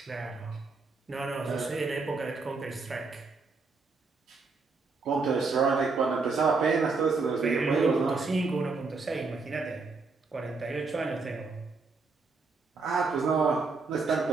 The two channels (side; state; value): left; quieter; 4.2 dB